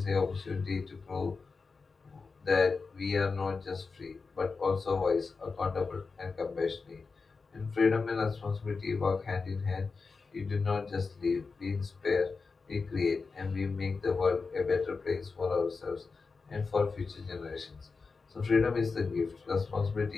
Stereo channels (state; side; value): quieter; right; 4.5 dB